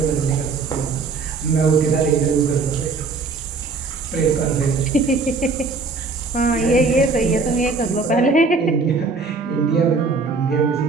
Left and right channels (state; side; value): quieter; left; 4.2 dB